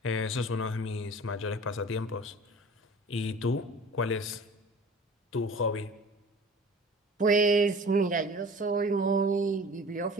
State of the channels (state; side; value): normal; both; correlation 0.43